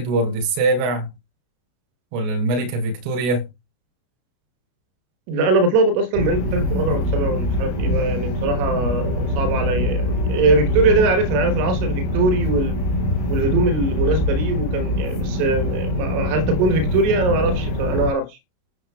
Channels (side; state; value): left; late; 32 ms